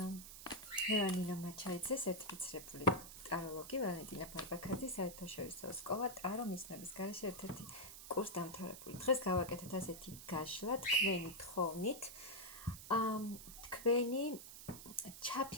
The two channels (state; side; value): noise; right; hiss, 13 dB below the sound